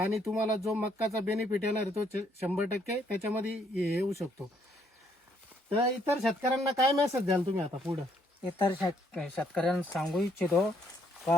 तुम्हाला जो मक्काचा बेनिफिट येणार आहे तो 100% त्याच्यामध्ये येऊ शकतो. तर इतर शेतकऱ्यांना काय मेसेज द्याल तुम्ही आता पुढं? इतर शेतकऱ्यांना सांगू इच्छितो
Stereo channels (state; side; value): normal; both; correlation 0.69